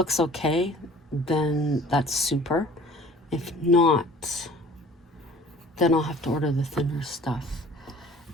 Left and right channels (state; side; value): normal; both; correlation 0.49